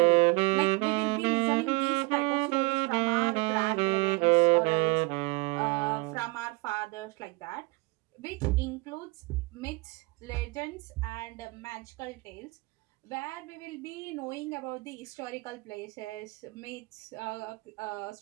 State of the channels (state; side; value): quieter; left; 26.2 dB